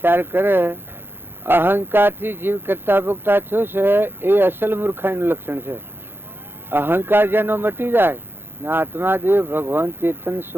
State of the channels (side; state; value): left; late; 0.10 ms